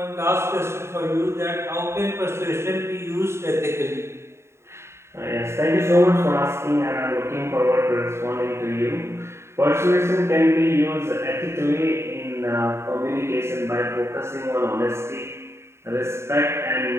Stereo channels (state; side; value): late; left; 0.13 ms